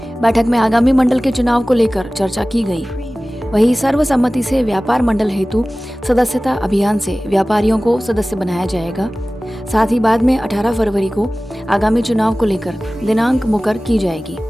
बैठक में आगामी मंडल के चुनाव को लेकर चर्चा की गई। वहीं सर्वसम्मति से व्यापार मंडल हेतु सदस्यता अभियान से व्यापारियों को सदस्य बनाया जाएगा। साथ ही बाद में 18 फरवरी को आगामी चुनाव को लेकर दिनांक मुकर की जाएगी।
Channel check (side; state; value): both; normal; correlation 0.97